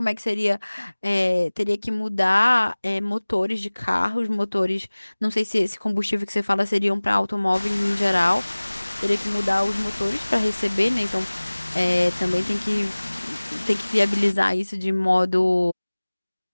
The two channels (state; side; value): inverted; both; correlation -1.00